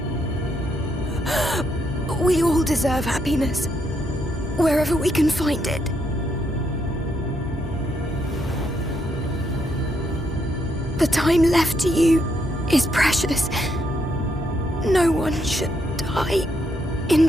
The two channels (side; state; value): both; normal; correlation 0.76